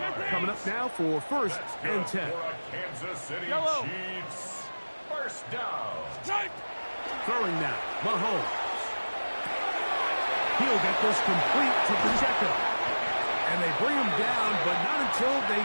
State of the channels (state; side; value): inverted; both; correlation -1.00